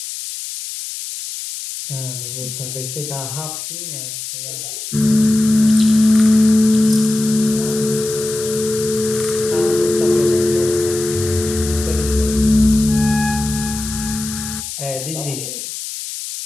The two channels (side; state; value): left; noise; hiss, 8 dB below the sound